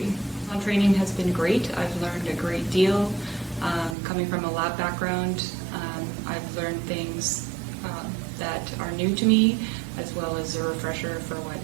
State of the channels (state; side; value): drops out; left; at 4.0 s